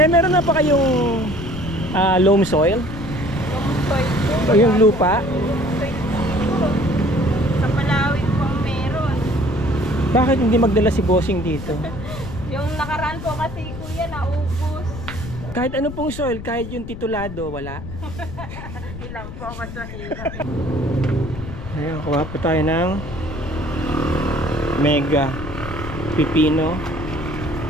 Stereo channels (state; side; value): noise; left; rumble, 10 dB below the sound